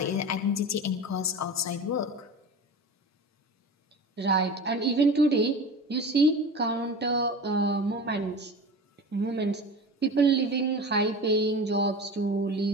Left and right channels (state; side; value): normal; both; correlation 0.33